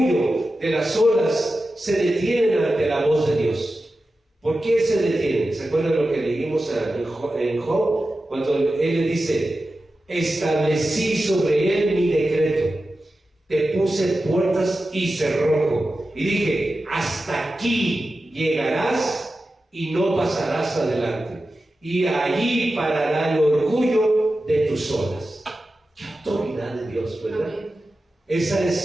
de las olas se detienen ante la voz de Dios. ¿Por qué se detienen? ¿Se acuerdan lo que leímos en Job? Cuando él le dice, establecí sobre él mi decreto. Te puse puertas y cerrojo. Y dije, hasta aquí llegarás y no pasarás adelante. Y allí parará el orgullo de tus olas. ¡Qué autoridad de Dios!, ¿verdad? Amén. Esa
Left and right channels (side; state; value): both; normal; correlation 0.93